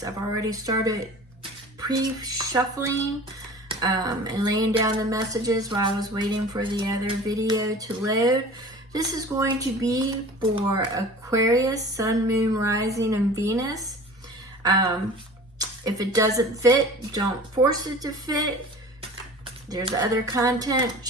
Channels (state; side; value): normal; both; correlation 0.41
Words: I've already started pre-shuffling and laying down the messages while I was waiting for the other video to load. This is going to be for Aquarius, Sun, Moon, Rising, and Venus. If it doesn't fit, don't force it to fit. There's other content.